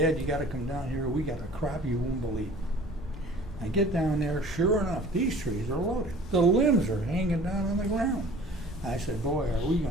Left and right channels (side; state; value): both; normal; correlation 0.46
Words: you got to come down here. We got a crop you won't believe." I get down there, sure enough, these trees are loaded. The limbs are hanging down on the ground. I said, "Boy, are we